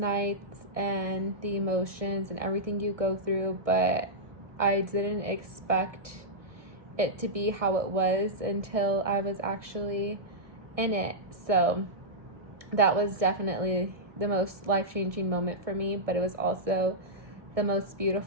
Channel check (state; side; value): late; left; 1.6 ms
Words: and the emotions and everything you go through, but I didn't expect it to be how it was until I was actually in it. So that was definitely the most life-changing moment for me, but it was also the most